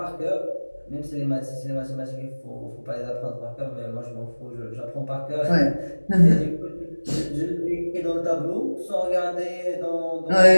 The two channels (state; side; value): inverted; both; correlation -1.00